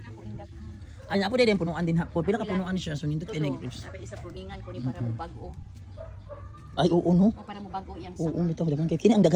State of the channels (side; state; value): both; identical; correlation 1.00